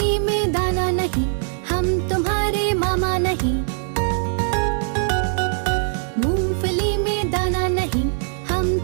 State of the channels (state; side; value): silent; left; digital silence